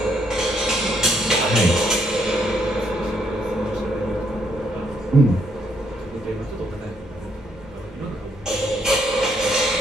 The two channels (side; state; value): both; normal; correlation 0.72